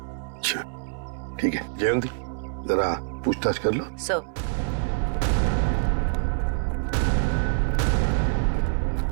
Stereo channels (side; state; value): left; silent; 61 dB below the other